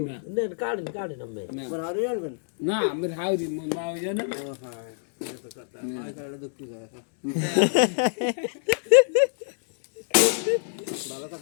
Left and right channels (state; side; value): silent; right; digital silence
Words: না নেন কাটেন কাটেন আমি তোমার আরো আনবেন না আমার হাউরি মা ওই জানা ও হ্যাঁ এটা তো কথা আই কারণে দুঃখ যায় ভালো